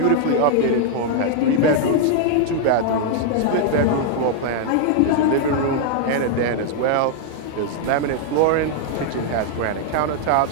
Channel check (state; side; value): different; both; correlation 0.00